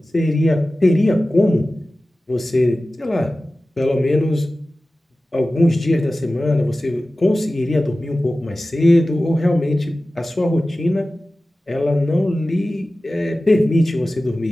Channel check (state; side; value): normal; both; correlation 0.96